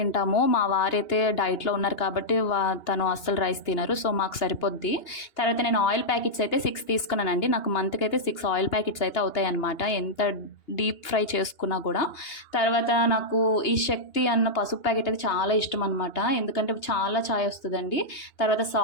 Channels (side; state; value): right; late; 2.9 ms